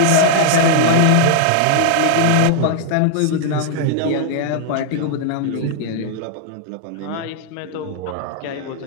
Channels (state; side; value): different; both; correlation -0.01